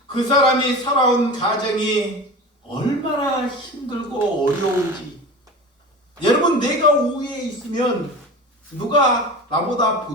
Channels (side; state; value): both; normal; correlation 0.32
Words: 그 사람이 살아온 가정이 얼마나 힘들고 어려운지, 여러분, 내가 우위에 있으면 누가 나보다